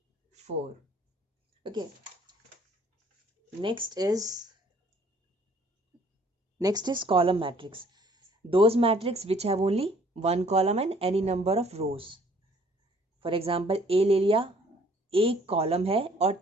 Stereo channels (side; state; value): both; normal; correlation 0.59